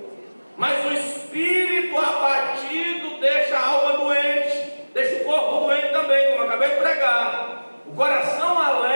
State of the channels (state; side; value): inverted; both; correlation -1.00